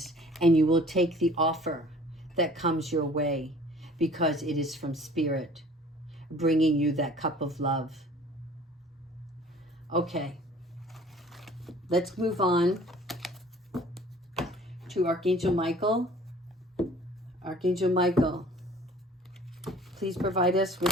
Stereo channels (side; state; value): both; normal; correlation 0.50